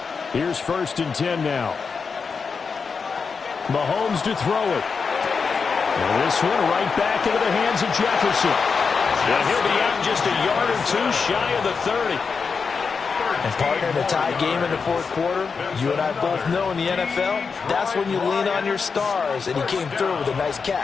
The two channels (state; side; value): quieter; right; 5.3 dB